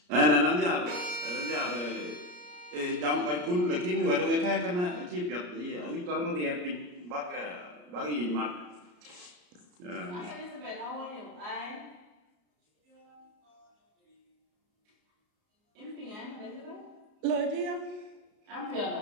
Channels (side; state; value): left; late; 34 ms